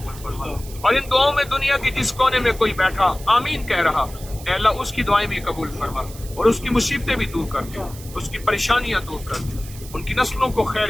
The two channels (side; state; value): right; noise; hiss, 17 dB below the sound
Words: فرما، اور ان دعاؤں میں دنیا کے جس کونے میں کوئی بیٹھا آمین کہہ رہا، اے اللہ اس کی دعائیں بھی قبول فرما، اور اس کی مصیبتیں بھی دور کر دے، اس کی پریشانیاں دور کر دے. ان کی نسلوں کو